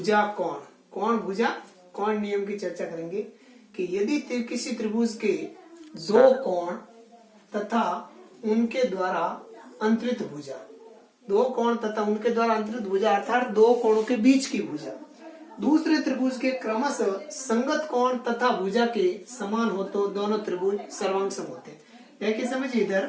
कोण नियम की चर्चा करेंगे कि यदि किसी त्रिभुज के दो कोण तथा उनके द्वारा अंतरित भुजा अर्थात दो कोणों के बीच की भुजा दूसरे त्रिभुज के क्रमशः संगत कोण तथा भुजा के समान हो तो दोनों त्रिभुज सर्वांग सम होते हैं। देखिए समझिए,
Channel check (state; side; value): identical; both; correlation 1.00